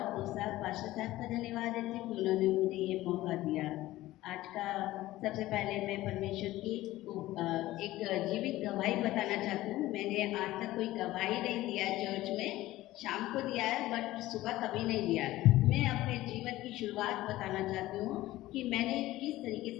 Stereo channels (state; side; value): quieter; right; 16.5 dB